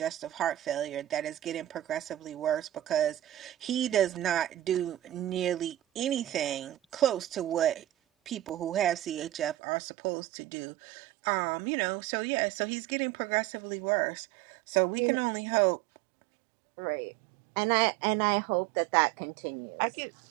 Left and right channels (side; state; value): left; drops out; at 9.6 s